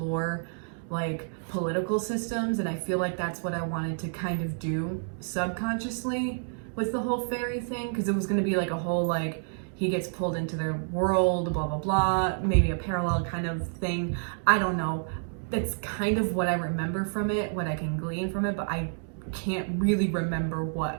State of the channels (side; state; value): left; silent; digital silence